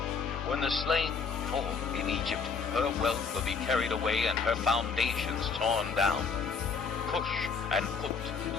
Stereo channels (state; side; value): quieter; right; 5.3 dB